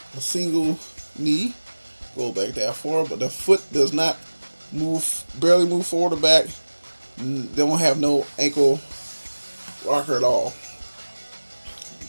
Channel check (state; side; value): inverted; both; correlation -1.00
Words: knee. Go back that far, but the foot does not barely move forward or back. They don't have no ankle rocker at all.